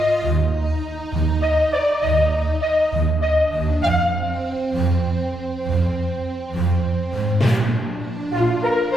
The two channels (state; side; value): normal; both; correlation 0.81